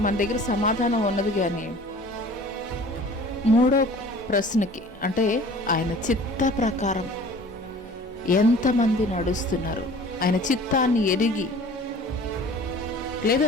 మన దగ్గర సమాధానం ఉన్నది. కానీ మూడో ప్రశ్నకి, అంటే ఆయన చిత్త ప్రకారం ఎంతమంది నడుస్తున్నారు, ఆయన చిత్తాన్ని ఎరిగి,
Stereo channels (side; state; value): both; normal; correlation 0.47